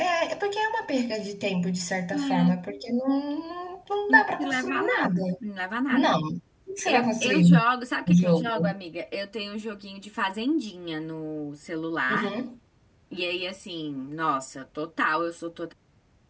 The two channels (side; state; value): both; identical; correlation 1.00